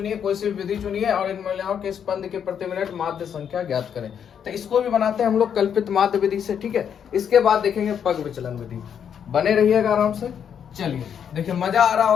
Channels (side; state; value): right; quieter; 8.2 dB